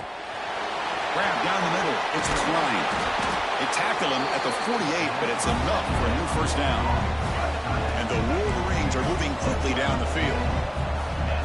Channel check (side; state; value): both; identical; correlation 1.00